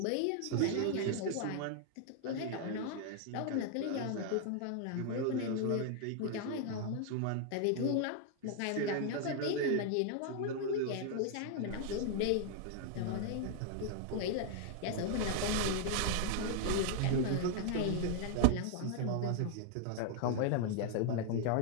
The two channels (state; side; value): different; both; correlation 0.00